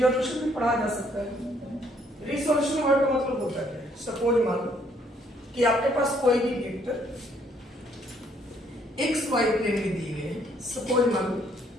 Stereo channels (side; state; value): both; normal; correlation 0.67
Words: भी पढ़ा जा सकता है। रिसोल्यूशन वर्ड का मतलब होता है, सपोज मान लो कि आपके पास कोई भी वेक्टर एक्स वाई प्लेन में दिए गए हैं। सपोज मान लो